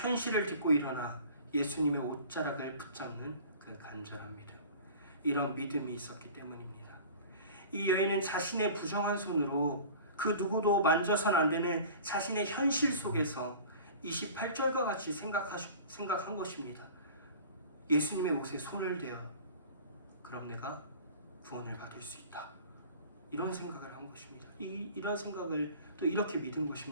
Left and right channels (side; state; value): both; inverted; correlation -0.42